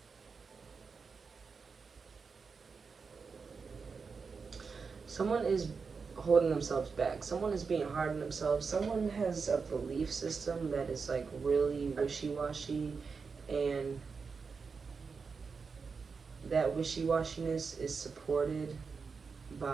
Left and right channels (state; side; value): quieter; left; 5.1 dB